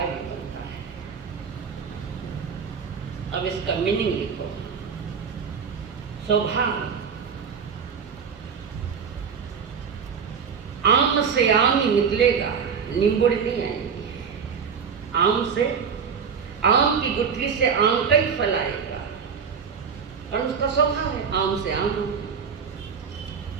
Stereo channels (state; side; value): quieter; left; 6.4 dB